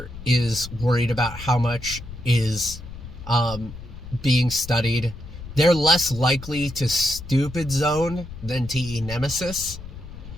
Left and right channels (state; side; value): noise; left; rumble, 13 dB below the sound